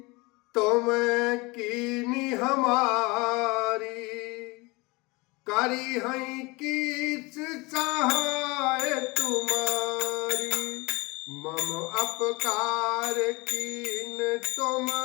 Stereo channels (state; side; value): quieter; right; 25.2 dB